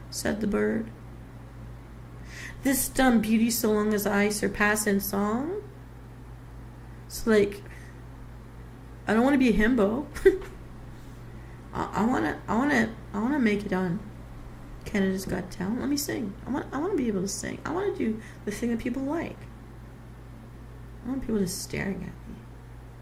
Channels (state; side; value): identical; both; correlation 1.00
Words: Said the bird. "This dumb beauty so long as I surpass in song." So, I don't want to be a himbo. I wanna make it on Canada's Got Talent. Let me sing. I want to be able to sing. I want to do the thing that people like. I want people just staring at me.